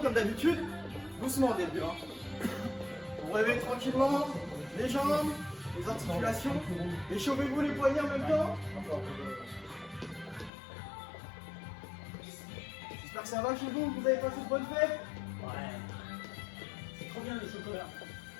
d'habitude. Doucement au début. Vous réveillez tranquillement les jambes, les articulations. Échauffez-vous les poignets en même temps. J'espère que ça va chez vous, que vous avez passé de bonnes fêtes. Ouais. C'est trop bien le chocolat.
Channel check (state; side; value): drops out; right; at 10.5 s